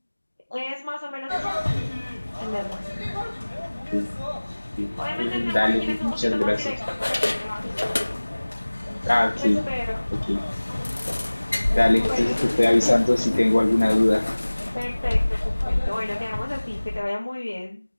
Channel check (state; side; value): inverted; both; correlation -1.00